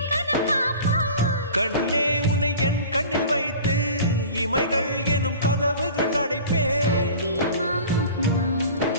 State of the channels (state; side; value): inverted; both; correlation -0.40